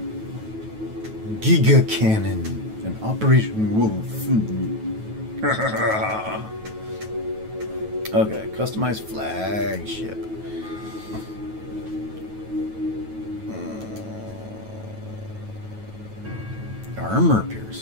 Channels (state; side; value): late; left; 9.3 ms